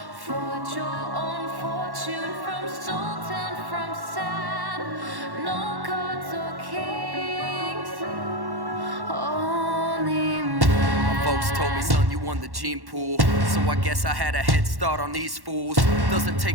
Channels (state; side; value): late; left; 1.1 ms